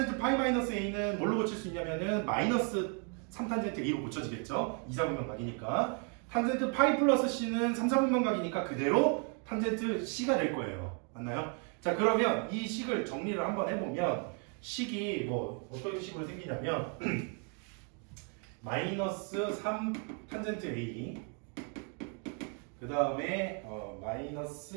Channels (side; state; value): left; quieter; 38.7 dB